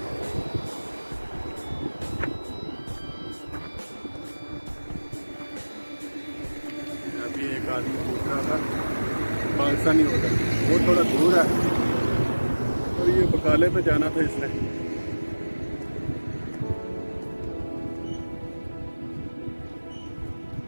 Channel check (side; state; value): both; inverted; correlation -1.00